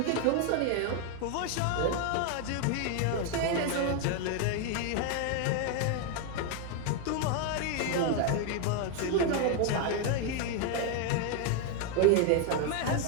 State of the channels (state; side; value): different; both; correlation 0.01